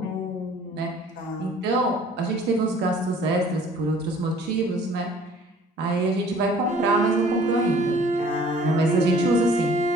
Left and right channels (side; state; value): both; normal; correlation 0.53